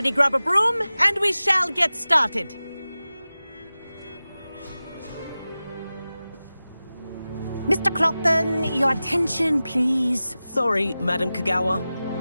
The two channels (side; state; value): both; inverted; correlation -0.96